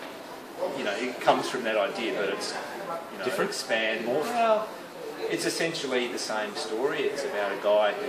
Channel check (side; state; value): both; identical; correlation 1.00